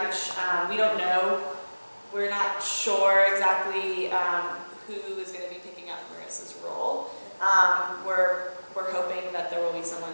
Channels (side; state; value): both; inverted; correlation -1.00